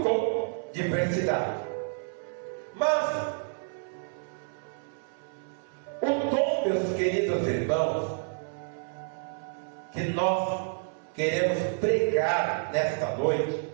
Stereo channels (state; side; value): silent; left; 58 dB below the other